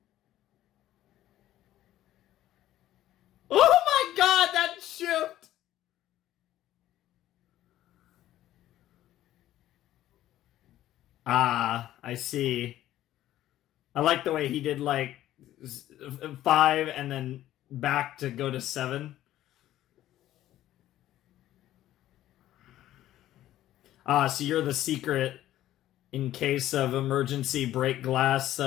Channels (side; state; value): right; quieter; 13.6 dB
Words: Oh my god, that shift! Ah, I see. I like the way he did like 5 and then back to go to 7. Ah, so you're the secret in case of emergency break glass,